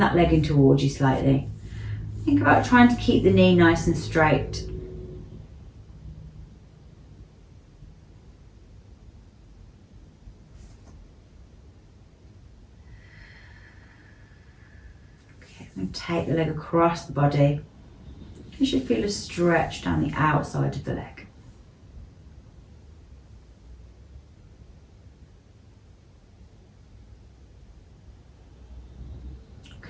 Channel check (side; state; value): both; identical; correlation 1.00